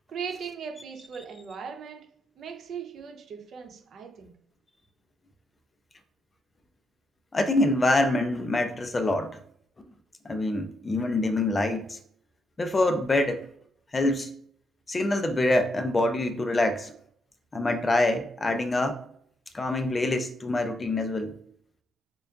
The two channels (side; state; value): both; normal; correlation 0.80